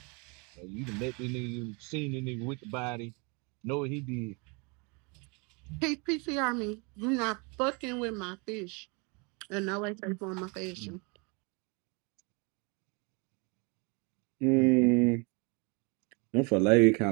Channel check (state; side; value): quieter; left; 31.4 dB